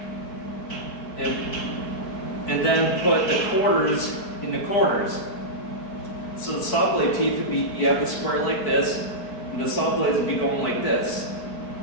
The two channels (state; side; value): late; right; 4.6 ms